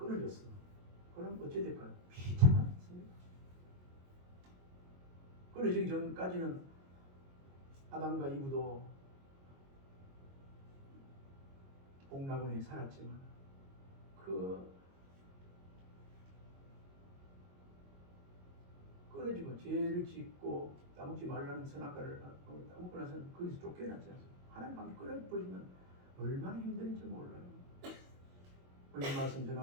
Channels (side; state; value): left; late; 22 ms